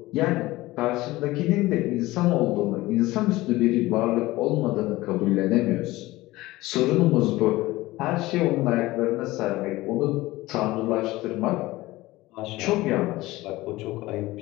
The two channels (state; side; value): quieter; right; 18.7 dB